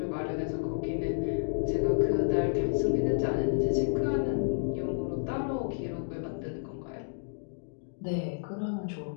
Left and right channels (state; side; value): silent; right; digital silence